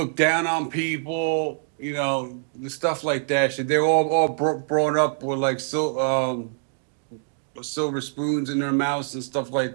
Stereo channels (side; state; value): left; silent; digital silence